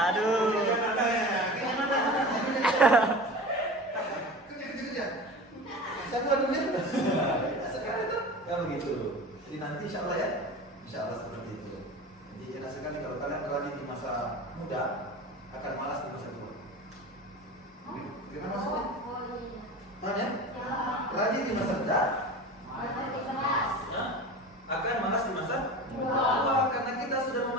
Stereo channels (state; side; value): normal; both; correlation 0.34